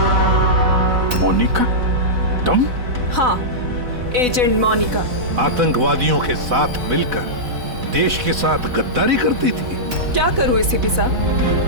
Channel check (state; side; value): late; left; 4.0 ms